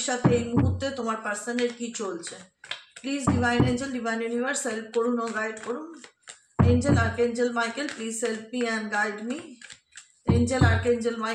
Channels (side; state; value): both; identical; correlation 1.00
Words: সাথে এই মুহূর্তে তোমার পার্সনের কি চলছে। Please divine angel, divine universe help করুন ও গাইড করুন। Angel, archangel Michael please help me and guide me. Angel, archangel